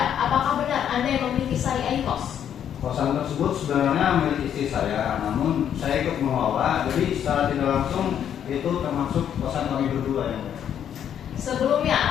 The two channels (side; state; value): right; quieter; 9.3 dB